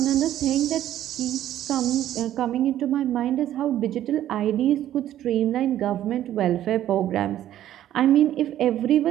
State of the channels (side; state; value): left; quieter; 12.3 dB